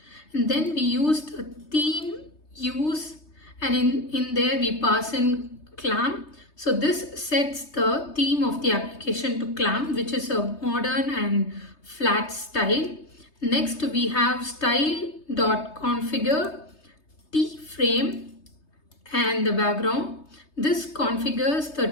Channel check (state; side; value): late; right; 3.3 ms